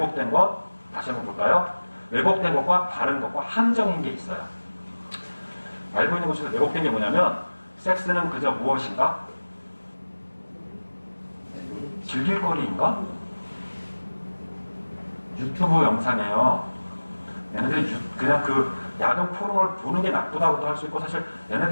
것 다시 한번 볼까요? 왜곡된 것과 바른 것과 함정인 게 있어요. 알고 있는 것 중에서 왜곡된 게 뭐냐면 섹스는 그저 무엇인가? 즐길 거리인가? 유튜브 영상이에요. 얘네들이 그냥 그 야동 포럼을 보는 게 나쁘다고도 할 수 있고 사실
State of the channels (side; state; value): both; inverted; correlation -1.00